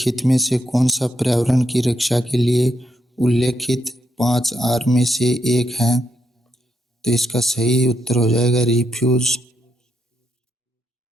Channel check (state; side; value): normal; both; correlation 0.80